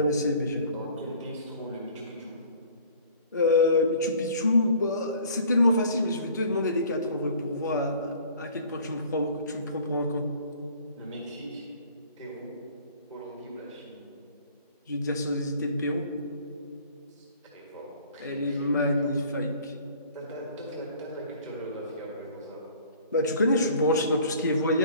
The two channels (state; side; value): inverted; both; correlation -0.51